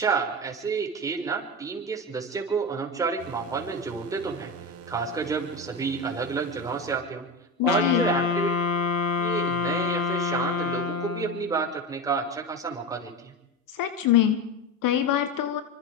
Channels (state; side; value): normal; both; correlation 0.21